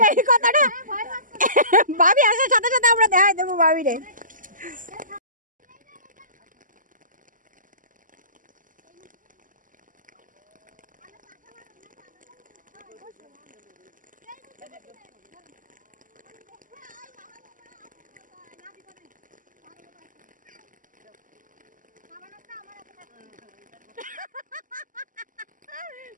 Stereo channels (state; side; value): late; left; 0.38 ms